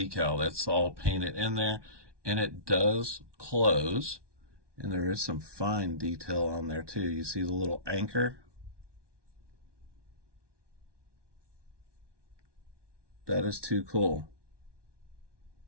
that's all painted in there. And it does close. And there is some fine detail on there too. You see the little anchor? That is too cool.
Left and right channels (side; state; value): left; late; 1.2 ms